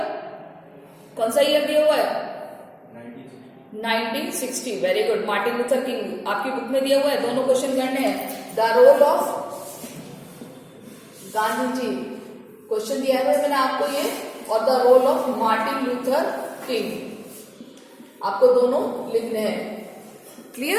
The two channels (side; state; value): both; identical; correlation 1.00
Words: कौन सा ईयर दिया हुआ है, 1960। Very good, Martin Luther King आपकी बुक में दिया हुआ है, दोनों क्वेश्चन करने हैं। The role of Gandhi ji question दिया है मैंने आपको ये, और the role of Martin Luther King आपको दोनों लिखने हैं।